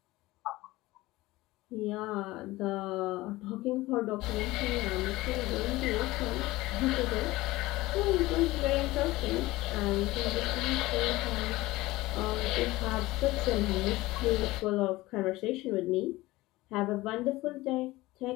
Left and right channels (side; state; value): right; quieter; 19.1 dB